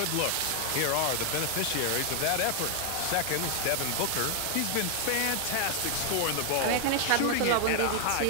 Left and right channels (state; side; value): different; both; correlation 0.00